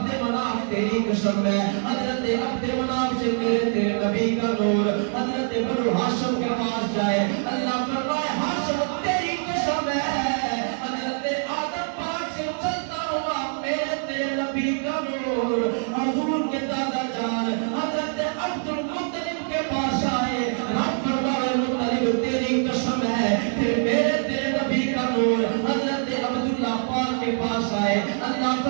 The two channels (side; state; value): left; silent; digital silence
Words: مناف تیری قسم قسم ہے حضرت عبد مناف سے میرے تیرے نبی کا نور حضرت بنو ہاشم کے پاس جائے اللہ فرمائے ہاشم تیری قسم ہے حضرت آدم پاک سے چلتا ہوا میرے تیرے نبی کا نور حضور کے دادا جان حضرت عبد المطلب کے پاس آئے رب فرمائے مطلب تیری قسم ہے پھر میرے تیرے نبی کا نور حضرت عبداللہ پاک کے پاس آئے اللہ